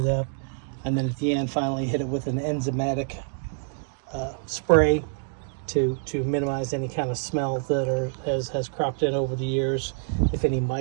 up. And then at the end, finally hit it with an enzymatic spray to minimize any kind of smell that has cropped in over the years. If any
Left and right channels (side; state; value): left; silent; digital silence